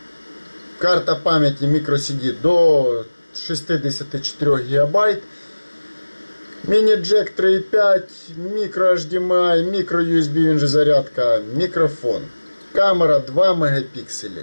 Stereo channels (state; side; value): inverted; both; correlation -1.00